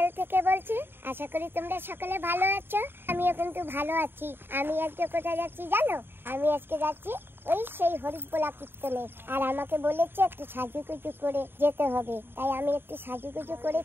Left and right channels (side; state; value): left; late; 0.10 ms